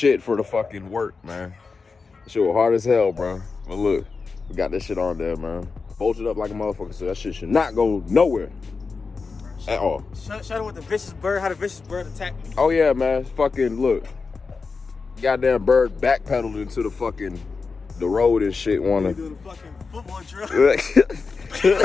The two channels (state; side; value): quieter; right; 4.6 dB